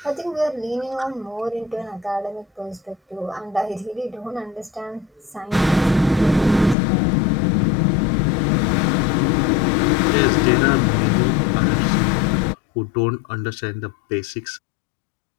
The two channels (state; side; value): drops out; right; at 6.8 s